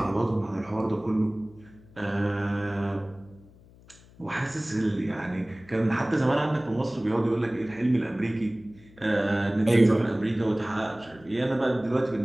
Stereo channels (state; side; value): noise; left; hum, 25 dB below the sound